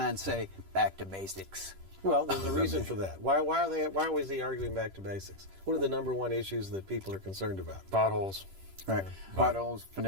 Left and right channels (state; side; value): late; left; 10 ms